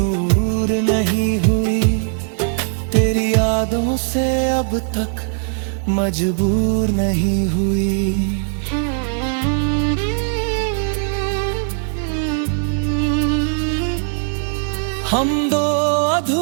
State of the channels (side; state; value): left; silent; digital silence